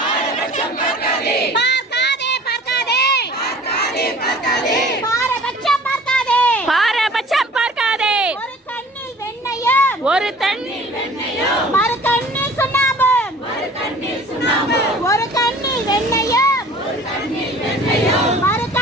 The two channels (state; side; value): normal; both; correlation 0.48